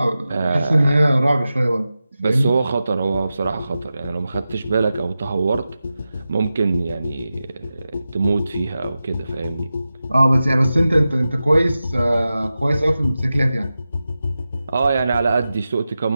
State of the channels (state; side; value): inverted; both; correlation -0.93